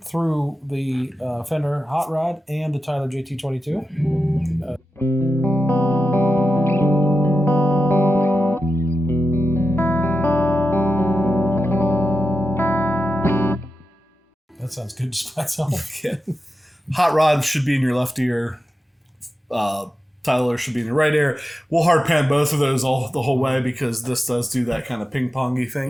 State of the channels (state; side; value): normal; both; correlation 0.90